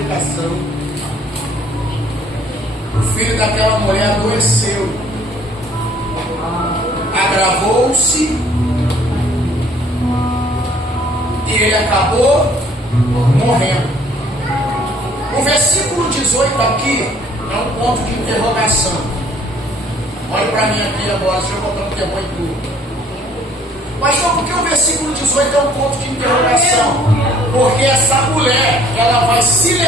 o filho daquela mulher adoeceu, agravou-se e ele acabou morrendo. O versículo 18 aqui é um ponto de interrogação. Olha para mim aqui agora, deixa eu botar um tempo em tudo. Mas só porque o versículo 18 é um ponto de interrogação? Porque essa mulher, ela vai se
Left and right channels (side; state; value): both; normal; correlation 0.59